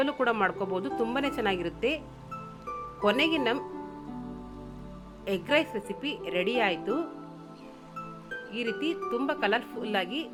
ಕೂಡ ಮಾಡ್ಕೋಬಹುದು, ತುಂಬಾನೇ ಚೆನ್ನಾಗಿರುತ್ತೆ. ಕೊನೆಗೆ ನಮ್ಮ ಎಗ್ ರೈಸ್ ರೆಸಿಪಿ ರೆಡಿ ಆಯಿತು. ಈ ರೀತಿ ತುಂಬಾ ಕಲರ್ಫುಲ್ ಆಗಿ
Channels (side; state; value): both; identical; correlation 1.00